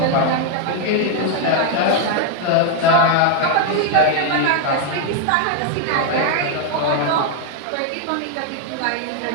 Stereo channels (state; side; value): different; both; correlation 0.00